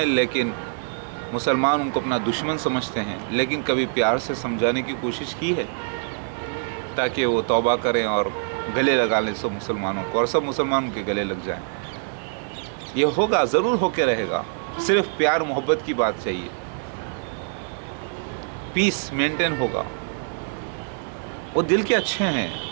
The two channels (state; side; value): silent; left; digital silence